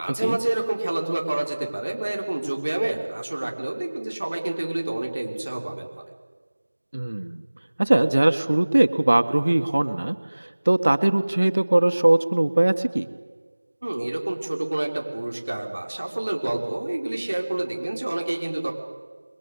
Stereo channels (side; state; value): both; inverted; correlation -1.00